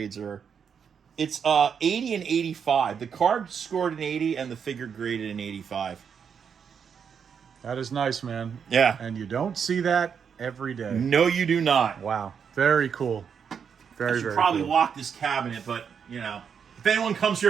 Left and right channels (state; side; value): quieter; left; 7.0 dB